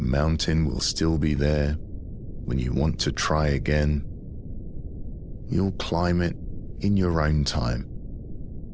mountain will still be there when you want to try again. You'll climb it in your own time.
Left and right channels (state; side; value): identical; both; correlation 1.00